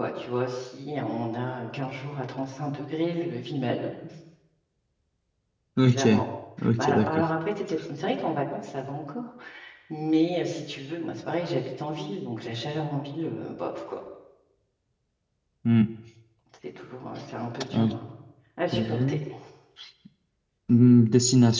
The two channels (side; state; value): both; identical; correlation 1.00